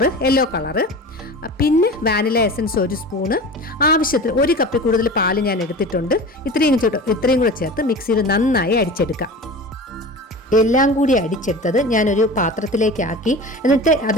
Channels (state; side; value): normal; both; correlation 0.34